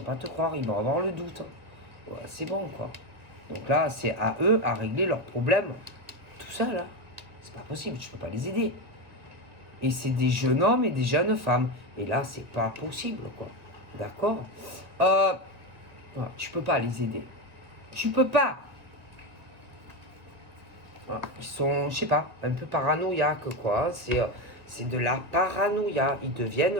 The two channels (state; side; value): late; left; 1.9 ms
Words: pas te croire. Ils vont avoir le doute. Ouais, c'est bon, quoi. Donc là, c'est à eux à régler leurs problèmes tout seul. Hein. C'est pas possible. Tu peux pas les aider. Et c'est des jeunes hommes et des jeunes femmes. Et là, c'est pas possible, quoi. D'accord tu peux pas les aider. Tu peux pas. Ils sont, je sais pas, un peu paranoïaques, quoi. C'est de la paranoïa. Ils